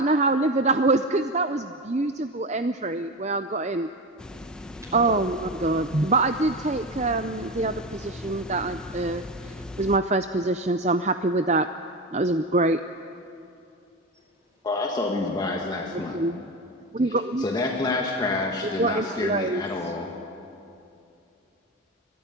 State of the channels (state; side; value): normal; both; correlation 0.22